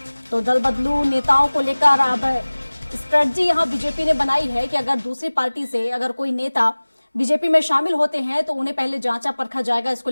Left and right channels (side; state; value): both; inverted; correlation -1.00